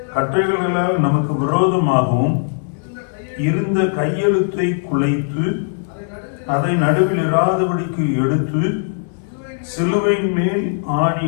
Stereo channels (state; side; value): silent; right; digital silence